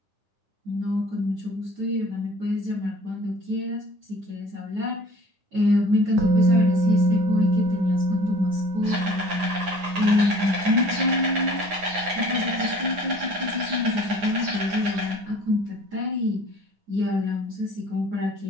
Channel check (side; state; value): left; late; 9.7 ms